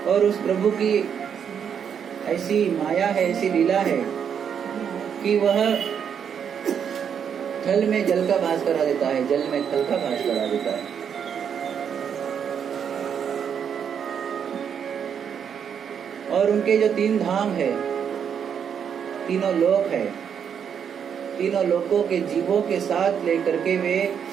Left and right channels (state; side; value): quieter; left; 7.8 dB